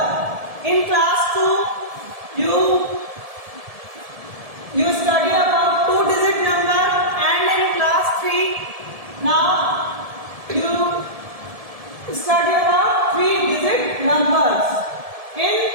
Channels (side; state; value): left; late; 1.7 ms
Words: In class 2, you study about two-digit number, and in class 3, now you study about three-digit numbers. In